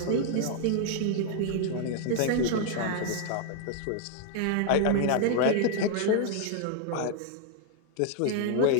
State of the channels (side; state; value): both; different; correlation 0.00